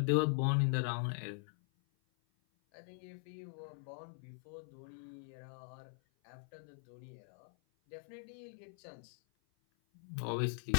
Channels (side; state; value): right; silent; 50 dB below the other